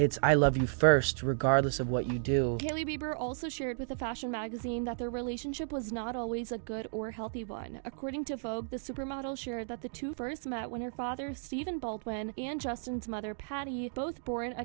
I love you first, regardless of what you do. Hailey Bieber also shared with a fashion magazine that their relationship was not always a good or healthy one. According to Vogue, the supermodel shared that the two first met when her father, Stephen Baldwin, and Justin's mother, Patty, both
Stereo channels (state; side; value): silent; left; digital silence